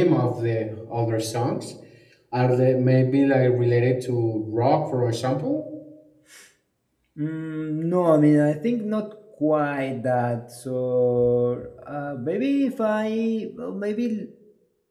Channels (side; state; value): both; identical; correlation 1.00